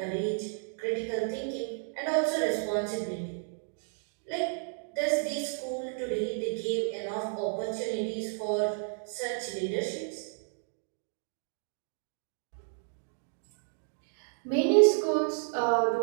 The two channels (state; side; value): silent; left; digital silence